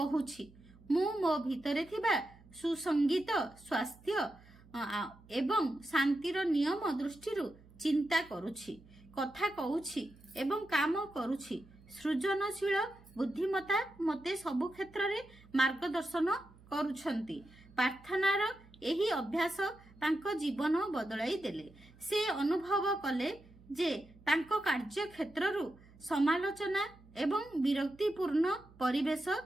ମୁଁ ମୋ ଭିତରେ ଥିବା ସୁସଙ୍ଗୀତ, ସ୍ୱାସ୍ଥ୍ୟ ଏବଂ ଶାନ୍ତିର ନିୟମ ଦୃଷ୍ଟିରୁ ଚିନ୍ତା କରୁଛି, କଥା କହୁଛି ଏବଂ କାମ କରୁଛି। ସୃଜନଶୀଳ ବୁଦ୍ଧିମତ୍ତା ମୋତେ ସବୁ କ୍ଷେତ୍ରରେ ମାର୍ଗଦର୍ଶନ କରୁଛନ୍ତି। ପ୍ରାର୍ଥନାର ଏହି ଅଭ୍ୟାସ ତାଙ୍କ ଜୀବନ ବଦଳାଇ ଦେଲେ। ସେ ଅନୁଭବ କଲେ ଯେ ତାଙ୍କ କାର୍ଯ୍ୟକ୍ଷେତ୍ରରୁ ସମାଲୋଚନା ଏବଂ ବିରକ୍ତିପୂର୍ଣ୍ଣ ପରିବେଶ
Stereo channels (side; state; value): right; noise; hum, 24 dB below the sound